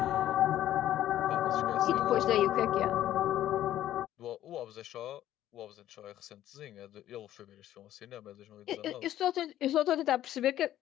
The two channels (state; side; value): quieter; right; 12.6 dB